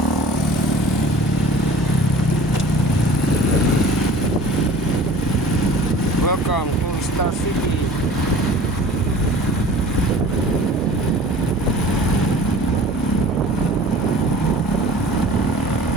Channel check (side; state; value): both; normal; correlation 0.44